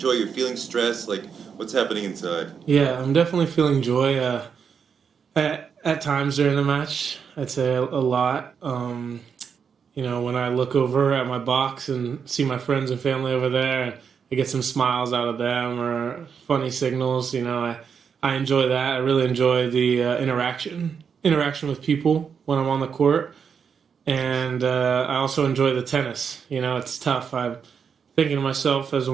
You're feeling stress? Like, what's happening inside? Yeah, I'm definitely feeling joy. At times during the match, I'd say a lot. When I look over at my box and see my friends and family over there, and I get some smiles out of them or funny signals, I enjoy that. I really enjoy the interaction with people when I'm on the court. And I also enjoy the tennis. It's tough. I'm thinking to myself as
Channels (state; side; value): quieter; left; 6.6 dB